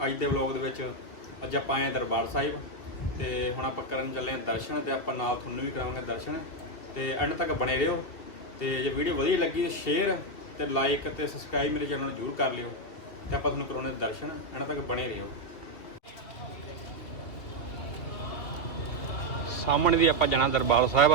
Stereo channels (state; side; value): late; right; 2.5 ms